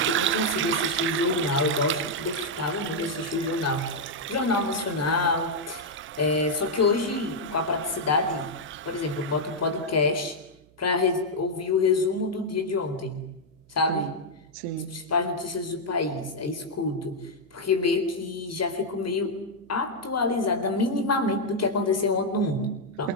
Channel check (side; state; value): right; noise; hum, 29 dB below the sound